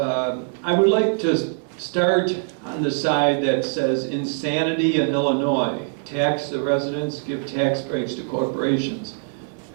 would like to start on the side that says insanity in Illinois. Tax the residents, give tax breaks to corporations.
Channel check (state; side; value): silent; left; digital silence